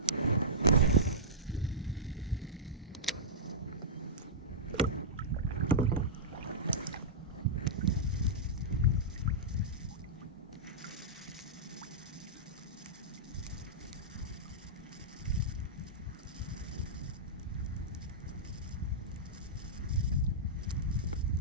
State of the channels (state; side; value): normal; both; correlation -0.15